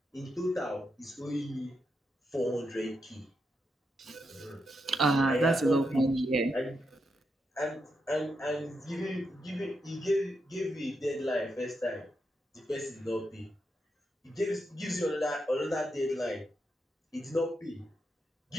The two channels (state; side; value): normal; both; correlation 0.84